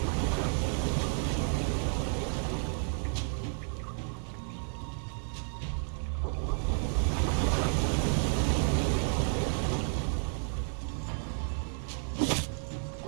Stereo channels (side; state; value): left; silent; 57 dB below the other